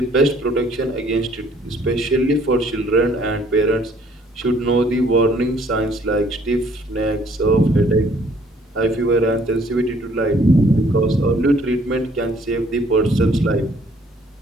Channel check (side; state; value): both; normal; correlation 0.61